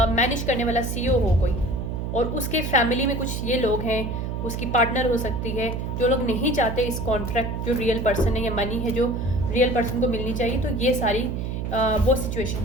मैनेज करने वाला CEO हो कोई, और उसके फैमिली में कुछ ये लोग हैं, उसकी पार्टनर हो सकती है, जो लोग नहीं चाहते इस कॉन्ट्रैक्ट जो रियल पर्सन है या मनी है जो रियल पर्सन को मिलनी चाहिए। तो ये सारी वो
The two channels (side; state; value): right; noise; hum, 3 dB below the sound